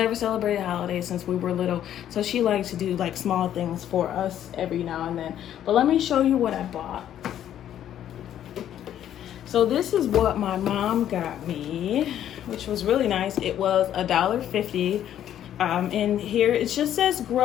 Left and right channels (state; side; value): quieter; right; 10.9 dB